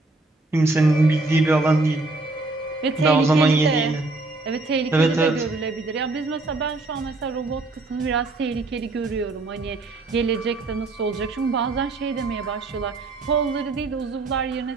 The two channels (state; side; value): quieter; left; 3.2 dB